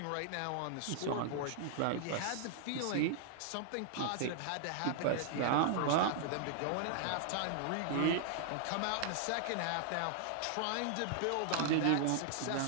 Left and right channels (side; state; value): both; different; correlation -0.01